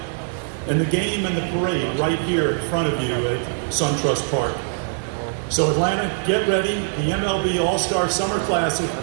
and the game and the parade right here in front of you at SunTrust Park. So Atlanta, get ready. The MLB All-Star Summer Classic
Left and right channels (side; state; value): left; silent; digital silence